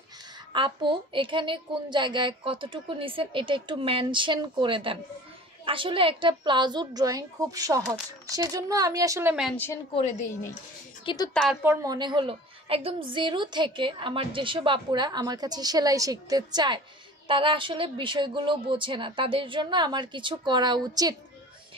আপু এখানে কোন জায়গায় কতটুকু নিছেন এটা একটু মেনশন করে দেন আসলে একটা প্লাজোর ড্রয়িং খুব সহজ সেজন্য আমি আসলে মেনশন করে দেইনি কিন্তু তারপর মনে হলো একদম জিরো থেকে আমার যেসব আপুরা আমার কাছে সেলাই শিখতে চায় তারা আসলে বিষয়গুলো বোঝে না তাদের জন্য আমার কিছু করা উচিত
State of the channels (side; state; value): both; normal; correlation 0.42